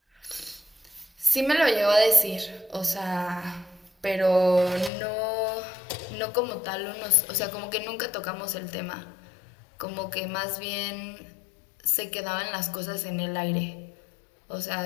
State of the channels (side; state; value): right; drops out; at 4.9 s